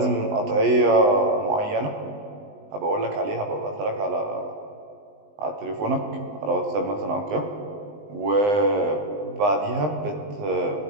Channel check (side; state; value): left; late; 20 ms